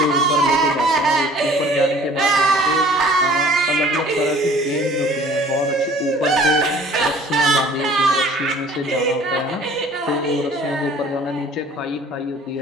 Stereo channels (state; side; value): normal; both; correlation 0.51